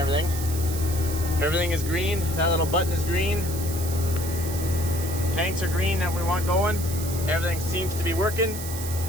Everything is green. That little button is green. Tanks are green that we want going. Everything seems to be working.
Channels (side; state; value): right; noise; hiss, 9 dB below the sound